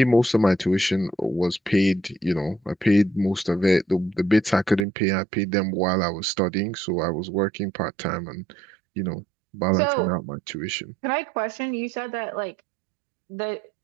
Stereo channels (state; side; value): drops out; left; at 4.9 s